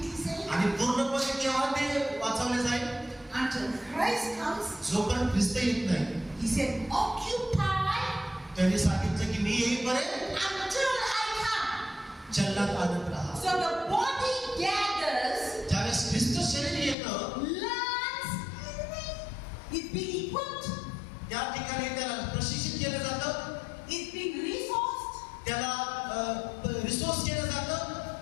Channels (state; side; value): drops out; right; at 16.9 s